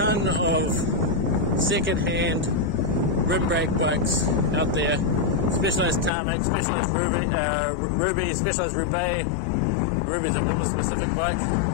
of second-hand rim brake bikes out there. Specialized Tarmac, Specialized Ruby, Specialized Roubaix. Ruby's a woman-specific bike.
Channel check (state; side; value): drops out; right; at 6.1 s